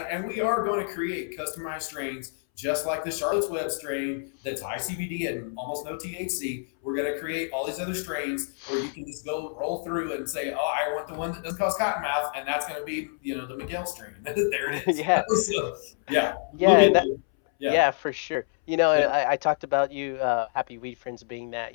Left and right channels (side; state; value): right; silent; 60 dB below the other